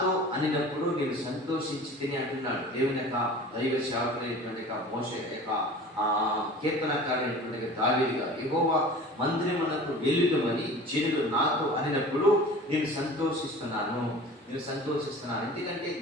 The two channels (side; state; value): both; normal; correlation 0.41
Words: అనినప్పుడు నేను సంతోషించి తిని అంటున్నాడు దేవుని యొక్క దైవ సేవకుడైనటువంటి మోషే యొక్క కీర్తనకారైనటువంటి దావీదు గారు. యెహోవా మందిరమునకు వెళ్ళుదమని జనులు నాతో అనినప్పుడు నేను సంతోషిస్తున్నాను. ఎందుకంటే